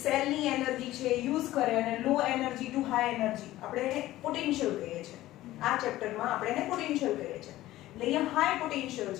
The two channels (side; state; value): right; quieter; 15.7 dB